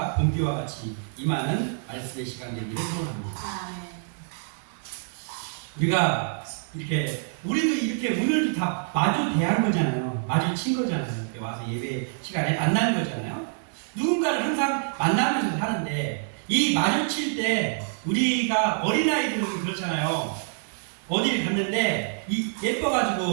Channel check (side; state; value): left; silent; digital silence